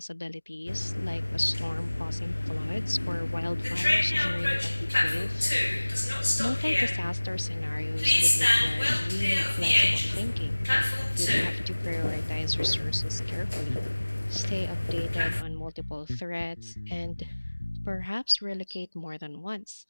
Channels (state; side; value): inverted; both; correlation -1.00